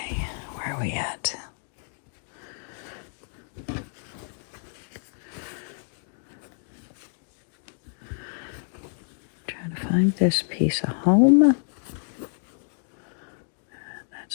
where are we at? Trying to find this piece of home.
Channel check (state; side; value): silent; right; 59 dB below the other